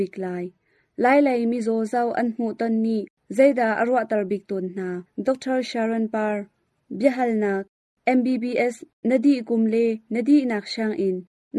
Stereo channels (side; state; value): both; identical; correlation 1.00